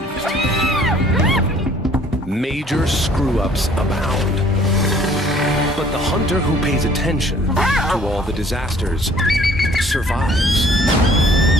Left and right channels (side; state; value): both; normal; correlation 0.57